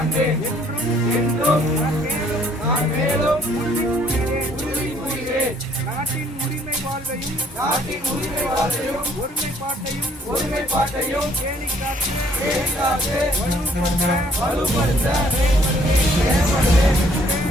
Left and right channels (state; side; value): normal; both; correlation 0.63